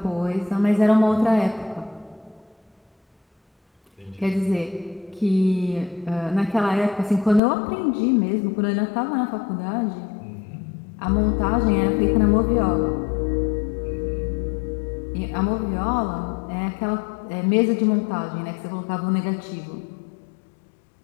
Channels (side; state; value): right; drops out; at 7.4 s